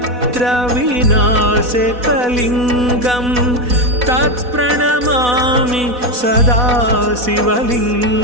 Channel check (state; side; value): late; left; 4.1 ms